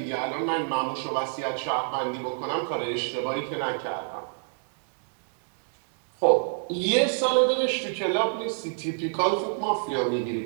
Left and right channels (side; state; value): left; silent; digital silence